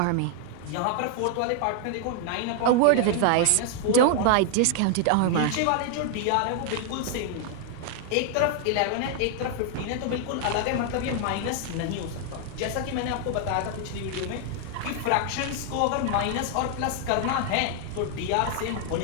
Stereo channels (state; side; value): different; both; correlation 0.00